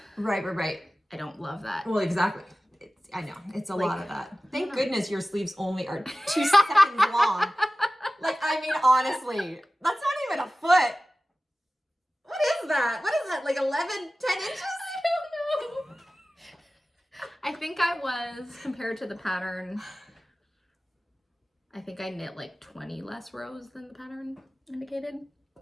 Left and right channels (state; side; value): normal; both; correlation 0.96